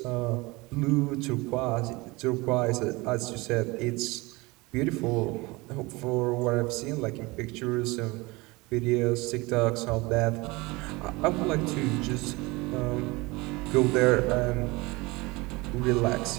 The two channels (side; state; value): left; quieter; 23.6 dB